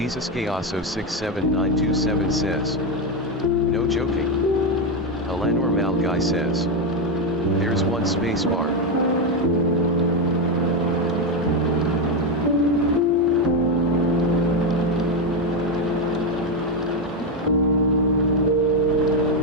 Gayaso 67927 says. No joking. Alanor Malguy says. There's one space bar.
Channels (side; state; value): both; normal; correlation 0.07